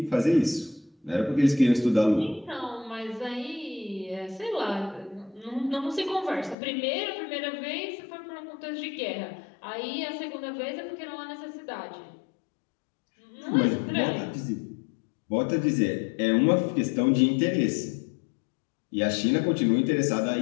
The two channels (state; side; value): drops out; right; at 6.6 s